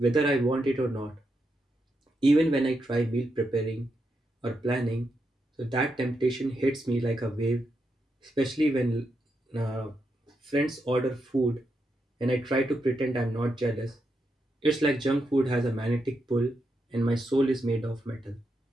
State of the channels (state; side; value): normal; both; correlation 0.83